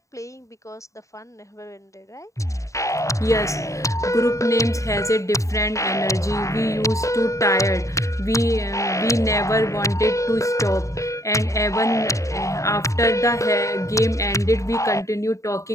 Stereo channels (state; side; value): late; right; 0.15 ms